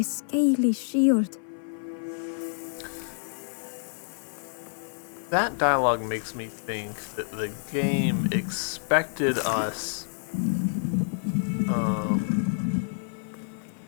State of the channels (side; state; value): right; silent; 59 dB below the other